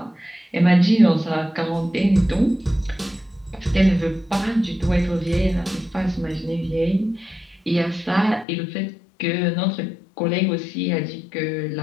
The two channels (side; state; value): right; drops out; at 8.5 s